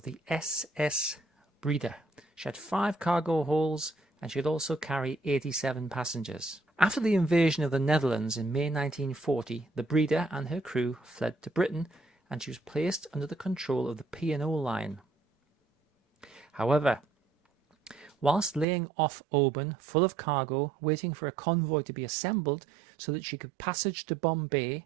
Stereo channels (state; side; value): drops out; left; at 18.7 s